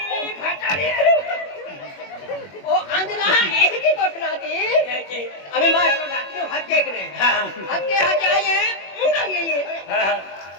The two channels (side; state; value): right; late; 21 ms